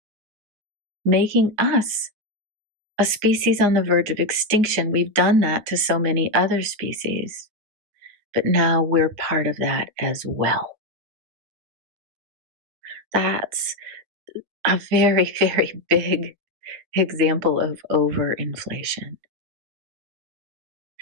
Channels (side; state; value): left; late; 9.2 ms